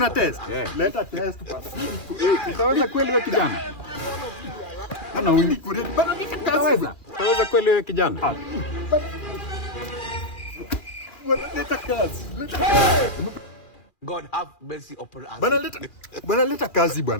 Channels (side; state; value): right; late; 2.4 ms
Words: test? Leta test bana. Utaweza kweli wewe kijana? Ana wili kure. Bana leta kazi. Utaweza kweli wewe kijana? Leta kazi. God have mercy upon us. Bana leta kazi